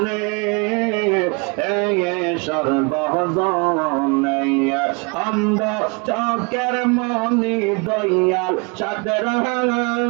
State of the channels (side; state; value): left; quieter; 31.0 dB